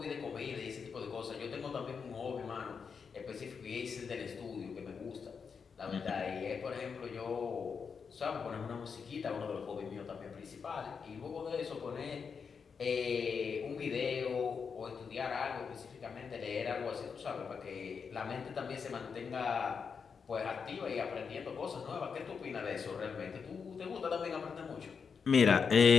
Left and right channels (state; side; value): quieter; right; 6.0 dB